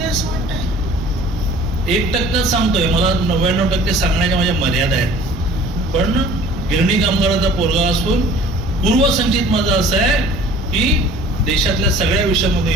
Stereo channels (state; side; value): normal; both; correlation 0.48